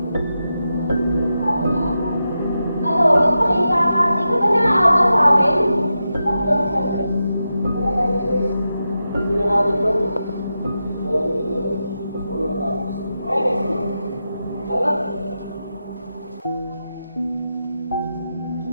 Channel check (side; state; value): both; inverted; correlation -0.89